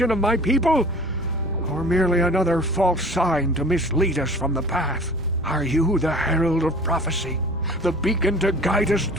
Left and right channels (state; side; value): normal; both; correlation 0.44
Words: of my people? Or merely another false sign to mislead us from the path? Are you the herald of prophecy, the beacon to guide us